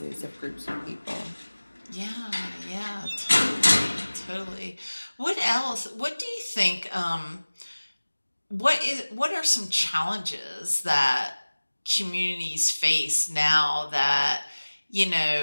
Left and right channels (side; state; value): both; inverted; correlation -1.00